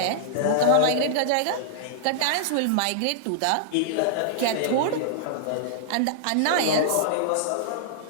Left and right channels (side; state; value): both; different; correlation -0.01